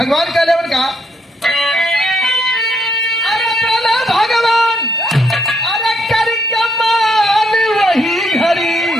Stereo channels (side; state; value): both; normal; correlation 0.74